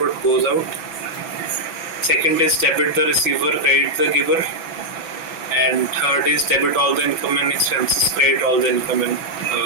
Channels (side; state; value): right; late; 6.0 ms